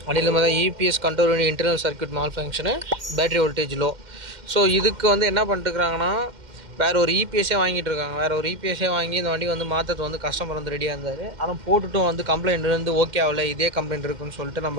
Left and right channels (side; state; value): left; late; 2.1 ms